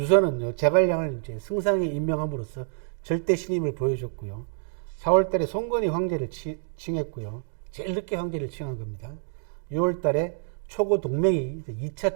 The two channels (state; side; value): silent; left; 60 dB below the other